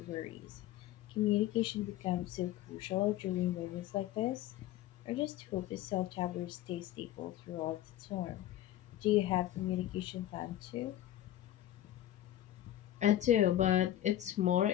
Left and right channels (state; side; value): quieter; right; 13.1 dB